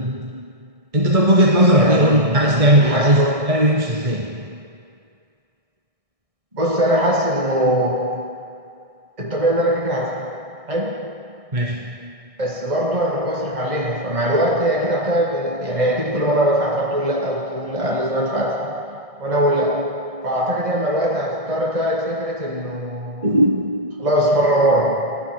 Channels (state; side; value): late; left; 1.6 ms